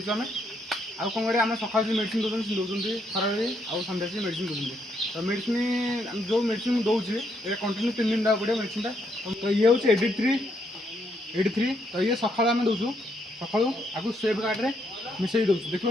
आम आउ कौन करें आम सकाल जो मेडिसिन दौरान दौरान खरारे आउ सन्ध्या से मेडिसिन दौरान तो मेडिसिन जो मेडिसिन दौचे ये कंटिन्यू 3 दिन देवा पड़े मेडिसिन तो ये हूँ 83 तो ये सका आम दौचु सका आगे सेफ गार्ड में मिसई दौचु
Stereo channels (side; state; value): both; normal; correlation 0.75